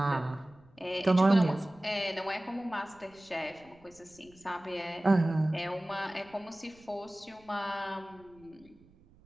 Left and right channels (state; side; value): noise; right; rumble, 28 dB below the sound